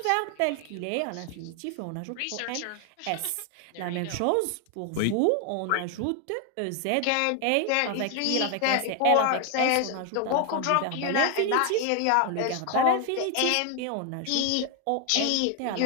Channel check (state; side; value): different; both; correlation 0.01